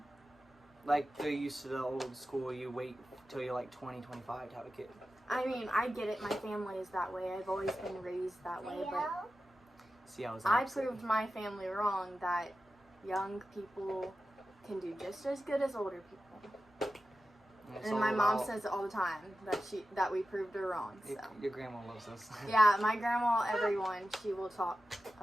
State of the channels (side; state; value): both; normal; correlation 0.93